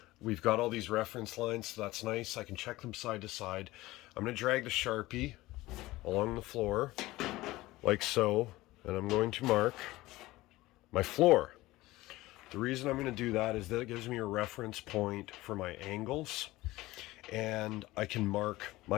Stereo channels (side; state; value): right; quieter; 18.4 dB